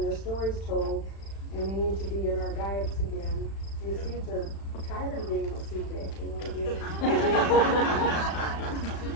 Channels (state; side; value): late; right; 36 ms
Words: their stories told, and they need to be in our diets again. The seeds are tired of being a seed bank, they want to be.